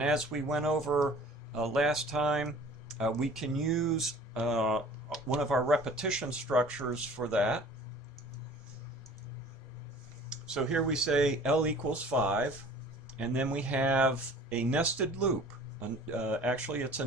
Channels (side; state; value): both; normal; correlation 0.48